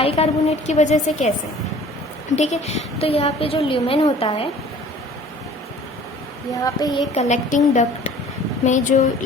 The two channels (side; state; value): both; normal; correlation 0.49